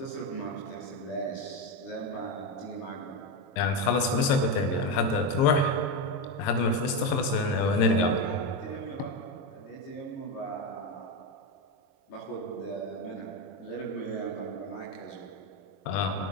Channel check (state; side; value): late; right; 22 ms